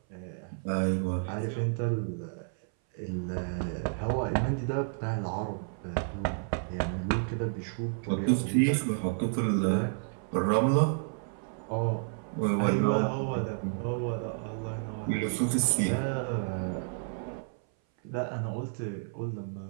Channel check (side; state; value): left; silent; 57 dB below the other